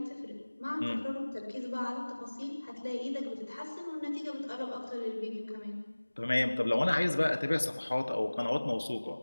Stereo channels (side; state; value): both; inverted; correlation -1.00